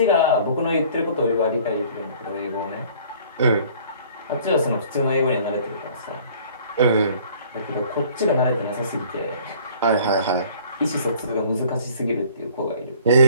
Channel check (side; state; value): both; inverted; correlation -0.53